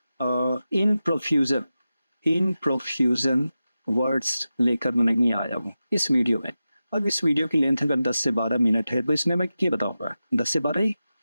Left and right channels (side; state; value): both; inverted; correlation -0.93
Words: इन प्रोफ्यूजन वर्ड्स लेकर नहीं आया हूँ इस वीडियो में। अब इस वीडियो की लेंथ अगर 10 से 12 मिनट है तो इसमें मैं क्या बताऊंगा, 10 से 12 ही।